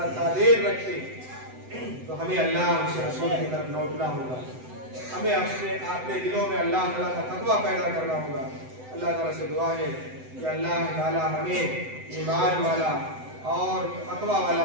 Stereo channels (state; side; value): late; left; 7.9 ms